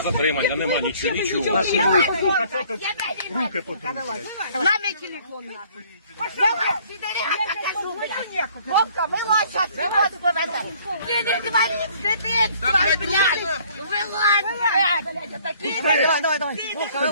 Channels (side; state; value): both; inverted; correlation -0.57